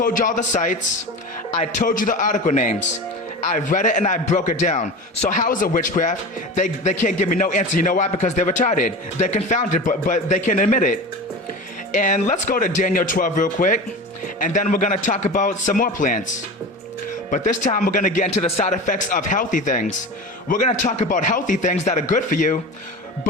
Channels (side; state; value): both; normal; correlation 0.30